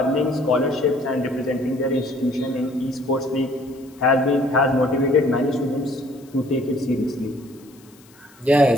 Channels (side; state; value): left; noise; hiss, 27 dB below the sound